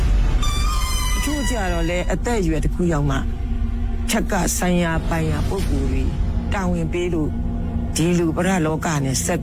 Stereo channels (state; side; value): identical; both; correlation 1.00